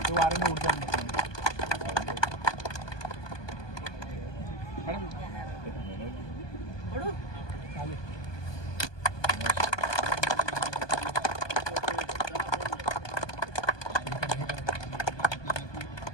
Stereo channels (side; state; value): right; late; 1.2 ms